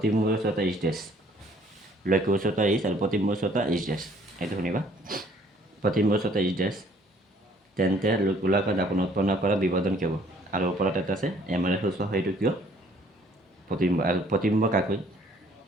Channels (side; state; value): both; normal; correlation 0.59